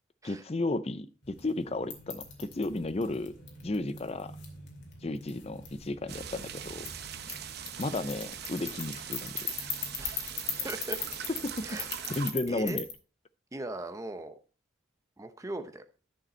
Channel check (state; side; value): normal; both; correlation 0.54